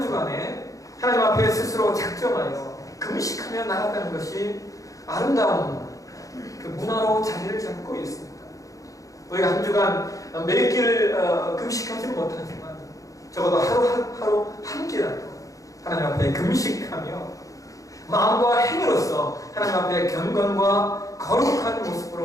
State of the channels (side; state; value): right; late; 0.16 ms